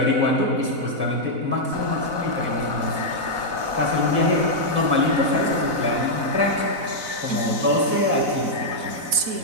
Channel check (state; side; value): late; left; 4.0 ms